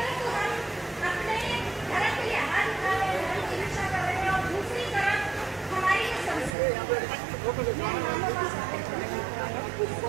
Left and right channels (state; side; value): drops out; left; at 6.5 s